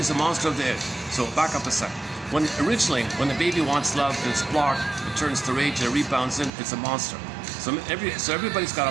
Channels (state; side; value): drops out; left; at 6.5 s